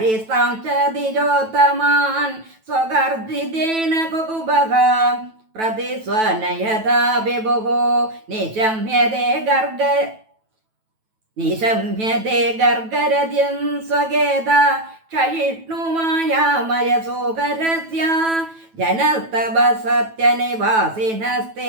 च द्विजोत्तमान् स्वगर्जितेन कुकुभः प्रतिस्वनयथा विभुः निशम्यते गर्गरद्यं स्वगेद क्षयिष्णुमायामयसोकरस्य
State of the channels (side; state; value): left; late; 9.1 ms